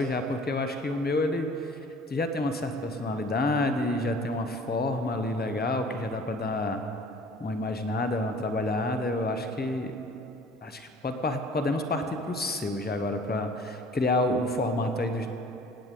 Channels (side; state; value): both; normal; correlation 0.49